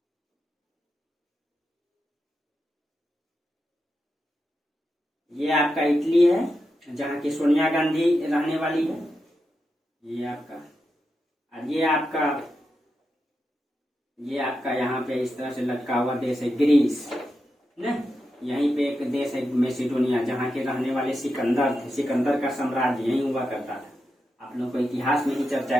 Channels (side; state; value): both; normal; correlation 0.88